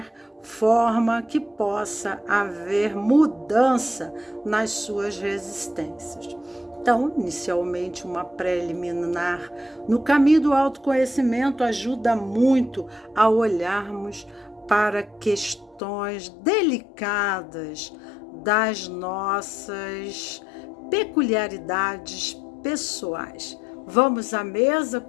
forma que possa haver mudança nas suas resistências. Então, inicialmente, uma preliminar no caminho do autoconhecimento ajuda muito a olharmos para questões delicadas das nossas peculiaridades pessoais. Vamos à mesa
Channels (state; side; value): drops out; right; at 15.8 s